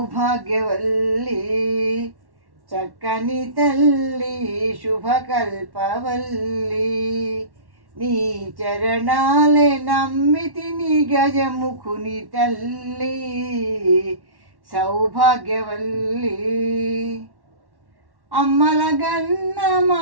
చక్కని తల్లి శుభకల్పవల్లి, నీ చరణాలే నమ్మితిని గజముఖుని తల్లి సౌభాగ్యవల్లి. అమ్మలగన్న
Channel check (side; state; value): left; late; 1.1 ms